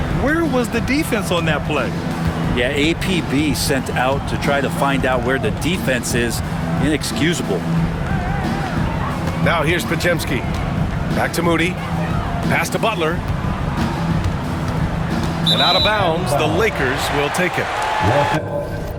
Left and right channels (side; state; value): both; identical; correlation 1.00